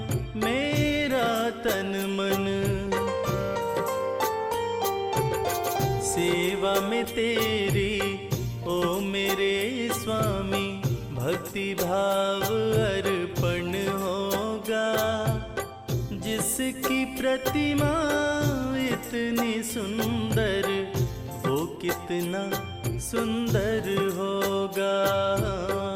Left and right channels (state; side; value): identical; both; correlation 1.00